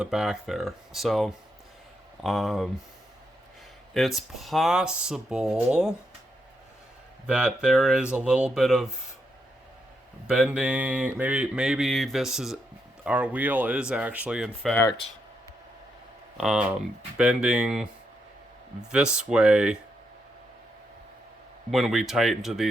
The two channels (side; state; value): both; normal; correlation 0.81